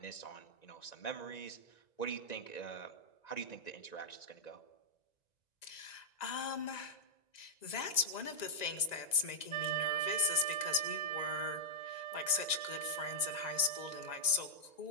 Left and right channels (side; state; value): right; late; 1.9 ms